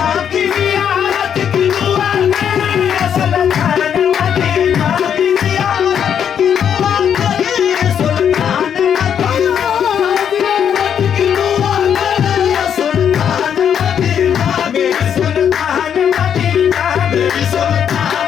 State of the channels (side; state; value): right; quieter; 8.4 dB